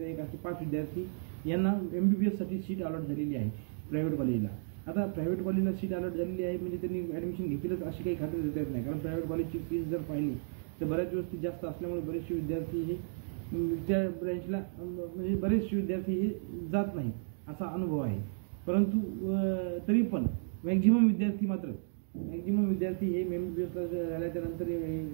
1 असे 5 विद्यार्थी यांना MBBSसाठी सीट अलॉट झालेली आहे प्रायव्हेट कॉलेजला. आता प्रायव्हेट कॉलेजला सीट अलॉट झालेली आहे म्हणजे त्यांनी ॲडमिशन घेतीलच अशी काही खात्री देता येत नाही. कारण प्रायव्हेट कॉलेजची फीस जर पाहिली तर बऱ्याच वस्ती जास्त असल्यामुळे बरेचसे विद्यार्थी हे त्या ब्रँचला म्हणजे बरेचसे विद्यार्थी हे जात नाहीत असा अनुभव आहे. परंतु तरी पण मॅक्झिमम विद्यार्थी हे MBBSला झाल्याच्या नंतर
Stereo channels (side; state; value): left; silent; digital silence